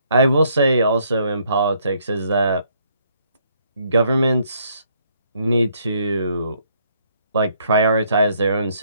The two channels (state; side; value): inverted; both; correlation -0.68